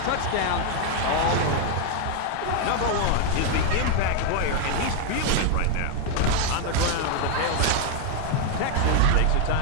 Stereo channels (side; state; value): both; different; correlation 0.00